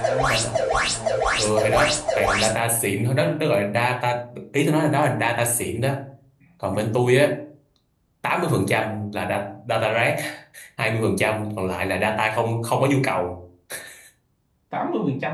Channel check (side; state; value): both; identical; correlation 1.00